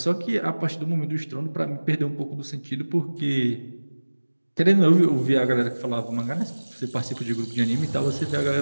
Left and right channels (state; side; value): inverted; both; correlation -1.00